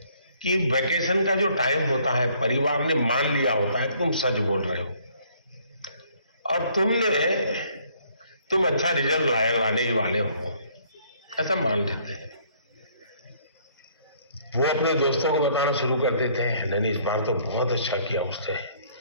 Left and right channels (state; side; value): inverted; both; correlation -0.63